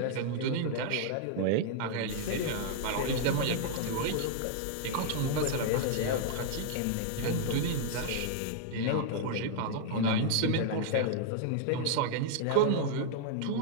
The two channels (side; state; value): both; different; correlation -0.01